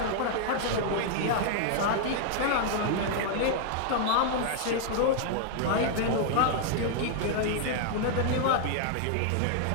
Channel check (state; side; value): different; both; correlation 0.00